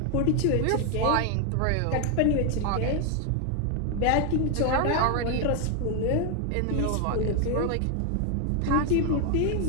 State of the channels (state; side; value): different; both; correlation 0.01